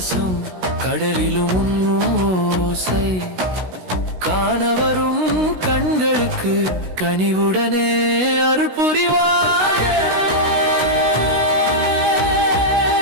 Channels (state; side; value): late; left; 16 ms